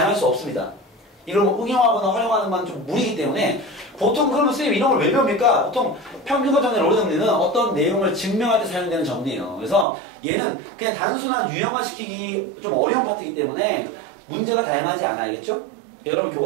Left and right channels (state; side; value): drops out; left; at 9.9 s